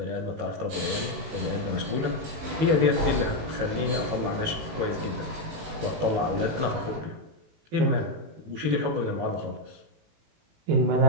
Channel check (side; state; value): left; late; 18 ms